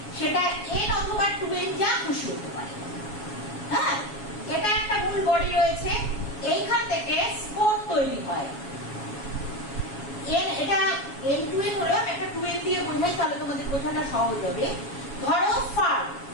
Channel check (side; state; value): right; late; 7.2 ms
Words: সেটা n অথবা 2n যা খুশি হতে পারে। হ্যাঁ, এটা একটা মূল বডি রয়েছে, এইখান থেকে স্পোর তৈরি হয়। এটা n2n হলো, আমি একটা 2n দিয়ে বোঝাই তাহলে তোমাদের বোঝানো সহজ হবে। ধরো ফার্ন,